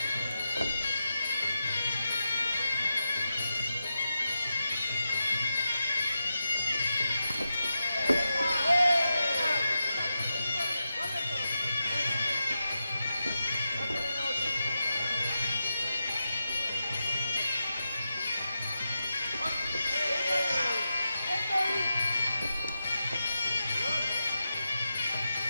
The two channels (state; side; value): inverted; both; correlation -0.89